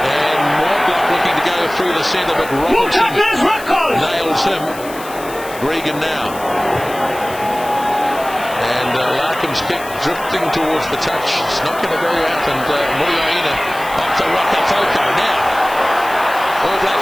Mortlock looking to go through the centre, but Robinson nails him. Regan now. And Larkham's kick drifting towards the touch. It's not going to go out. And Muriaina up to Rakafoko now. All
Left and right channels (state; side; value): noise; left; hiss, 16 dB below the sound